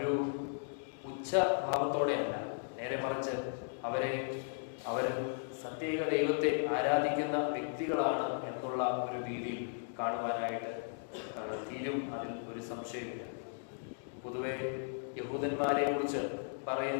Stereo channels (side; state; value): right; silent; digital silence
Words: ഉച്ചഭാവത്തോടെയല്ല, നേരെ മറിച്ച് അവർ സത്യേക ദൈവത്തെ ആരാധിക്കുന്ന വ്യക്തികളാണ് എന്നുള്ള ഒരു രീതിയിൽ കാണുവാനായിട്ട് തീരും. അതിൽ ഒരു സംശയമില്ല. പൊതുവെ യഹൂദന്മാരെ കുറിച്ച്